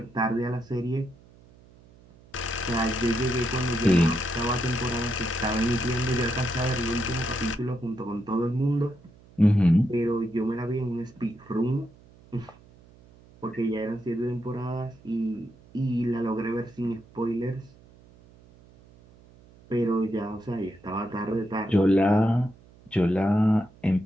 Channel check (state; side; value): noise; right; hum, 25 dB below the sound